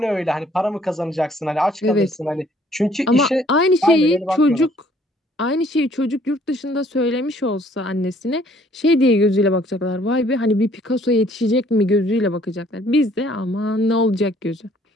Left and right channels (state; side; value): normal; both; correlation 0.61